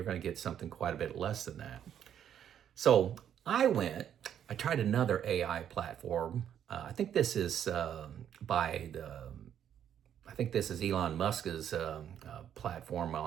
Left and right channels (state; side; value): quieter; left; 9.5 dB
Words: going to get something quite a bit less than that. So I tried another AI platform. I think this is Elon Musk's platform